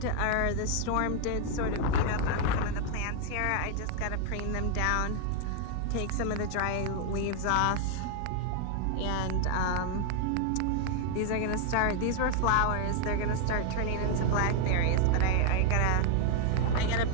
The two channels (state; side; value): different; both; correlation 0.00